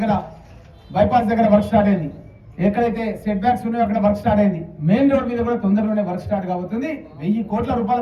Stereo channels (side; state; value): both; identical; correlation 1.00